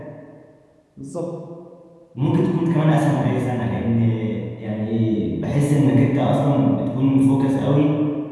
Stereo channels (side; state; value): both; identical; correlation 1.00